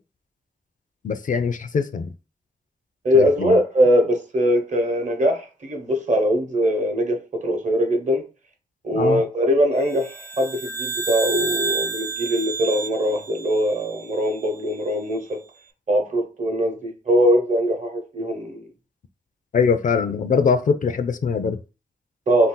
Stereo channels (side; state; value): both; normal; correlation 0.58